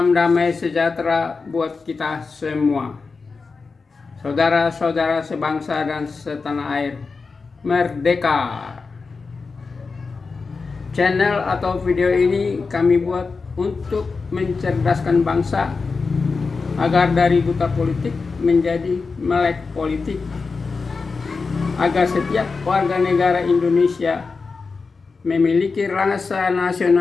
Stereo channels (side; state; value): right; quieter; 4.5 dB